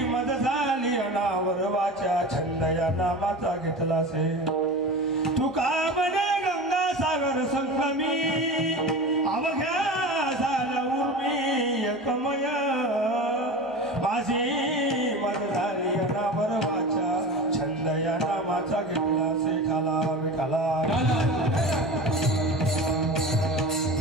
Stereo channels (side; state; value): both; normal; correlation 0.31